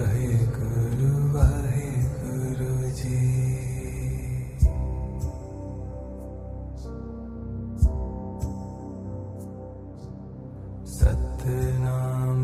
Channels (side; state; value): both; identical; correlation 1.00